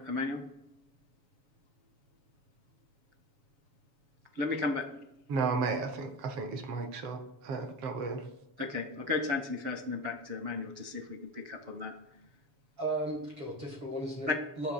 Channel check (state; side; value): late; left; 7.2 ms